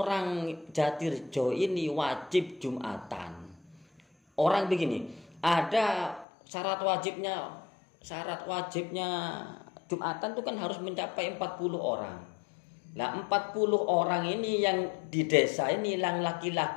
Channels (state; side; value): drops out; right; at 6.2 s